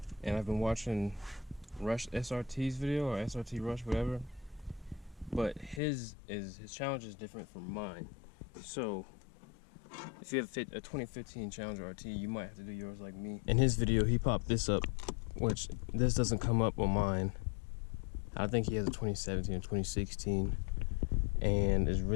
and I've been watching Rush SRT's video, or SRT Rush, whatever. But his Challenger is different from mine. So if you have a 2015 Challenger RT, you might have to do yours like me. In his video, he popped this up, which this doesn't come up on mine. I think he has a 2017 or 2016, and it's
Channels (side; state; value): right; drops out; at 5.8 s